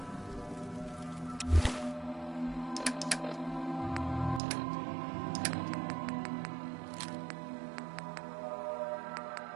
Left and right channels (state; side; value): drops out; left; at 4.4 s